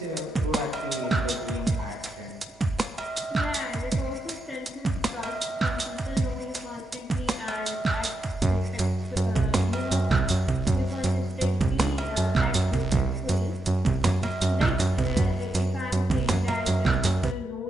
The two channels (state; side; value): normal; both; correlation 0.85